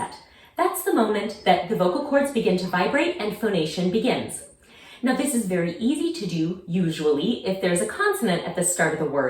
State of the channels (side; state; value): both; identical; correlation 1.00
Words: That's the moment that the vocal cords begin to vibrate and phonation begins. Now this is very easy to do, usually, if there's a consonant at the start of the